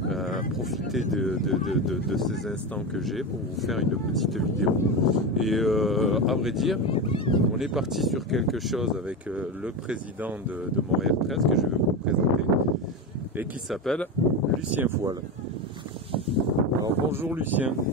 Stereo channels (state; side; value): normal; both; correlation 0.18